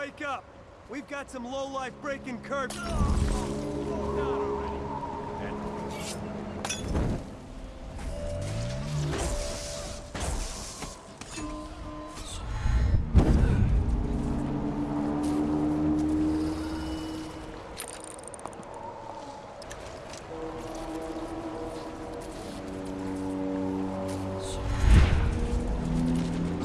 up. We've got some lowlife breaking curbs.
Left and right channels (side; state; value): both; identical; correlation 1.00